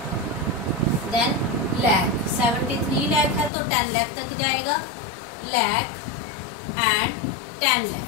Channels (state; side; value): drops out; right; at 3.5 s